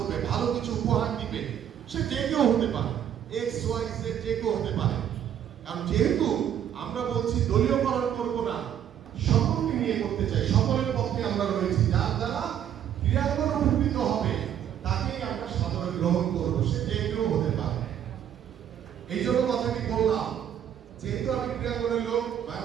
ভালো কিছু উপহার দিবে, সে যে কেউ হতে পারে, এক্স ওয়াই জেড যে কেউ হতে পারে। কারণ যেহেতু আমরা বলছি দলীয়করণ করবো না, সকলকে নিয়ে করতে চাই, সকলের পক্ষে আমরা রয়েছি, যার দ্বারা ক্রিয়াঙ্গন উপকৃত হবে তাকেই আমরা সাধারণ গ্রহণ করবো, সে যে কেউ হতে পারে। এই জন্য কথাটি বললাম, যেহেতু আমি ক্রিয়াঙ্গনের লোক,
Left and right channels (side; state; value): left; quieter; 9.9 dB